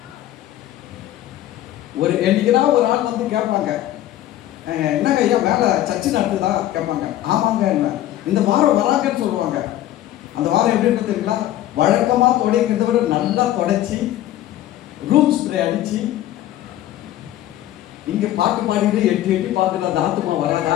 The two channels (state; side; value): quieter; right; 13.4 dB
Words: என்னைக்குனா ஒரு ஆள் வந்து கேட்பாங்க, என்னங்க ஐயா வேலை சர்ச்சு நடத்துதா கேட்பாங்க. ஆமாங்க, என்ன இந்த வாரம் வராங்கன்னு சொல்லுவாங்க. அந்த வாரம் எப்படி இருக்கு தெரியுங்களா? வழக்கமாக துடைக்கிறத விட நல்லா துடைச்சி ரூம் ஸ்ப்ரே அடித்து இங்கே பாட்டு பாடிட்டு எட்டி எட்டி பார்க்குற அந்த ஆத்மா